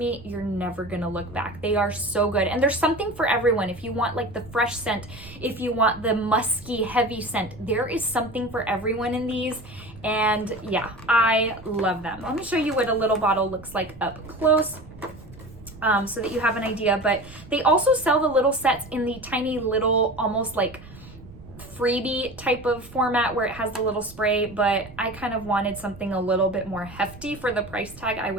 you're never gonna look back. They are so good, and there's something for everyone. If you want like the fresh scent, if you want the musky, heavy scent, there is something for everyone in these. And yeah, I love them. Let me show you what a little bottle looks like up close. So that you have an idea, but they also sell the little sets in the tiny little, almost like freebie type of format where it has the little spray, but I kind of wanted something a little bit more hefty for the price tag I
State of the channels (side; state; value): right; noise; rumble, 19 dB below the sound